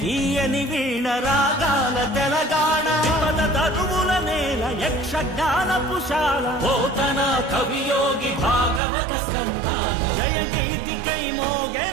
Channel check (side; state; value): left; drops out; at 8.8 s